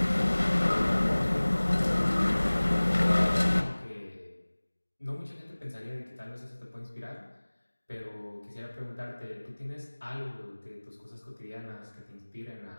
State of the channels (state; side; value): inverted; both; correlation -1.00